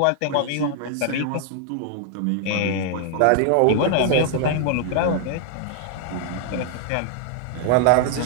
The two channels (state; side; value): different; both; correlation 0.00